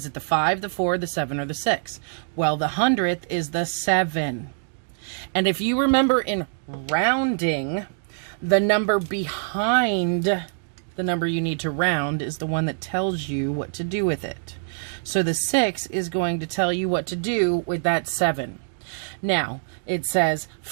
it the 5, the 4, the 7, or the 6? Well, the hundredth is the 7. And if you remember in rounding, the number behind the number you need to round is the one that tells you what to do with it. So the 6 is going to tell you what to do with that 7. Now, it says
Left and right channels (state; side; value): silent; left; digital silence